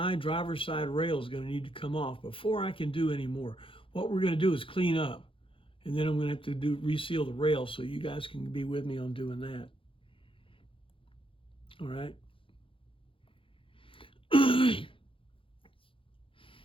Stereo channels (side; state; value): right; late; 0.25 ms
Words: driver's side rail is going to need to come off before I can do any more. What we're going to do is clean up, and then I'm going to have to reseal the rail, so you guys can be with me on doing that. All right.